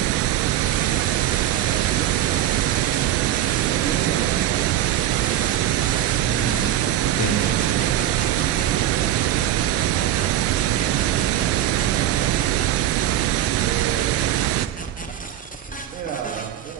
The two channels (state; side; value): quieter; left; 12.1 dB